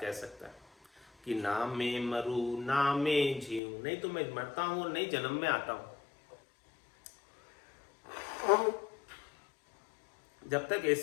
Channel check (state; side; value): drops out; right; at 3.6 s